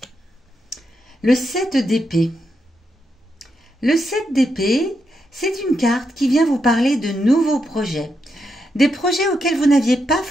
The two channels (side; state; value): both; normal; correlation 0.83